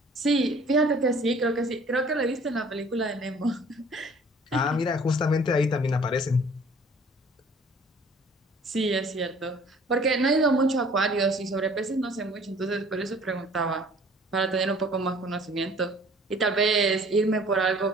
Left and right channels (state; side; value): normal; both; correlation 0.53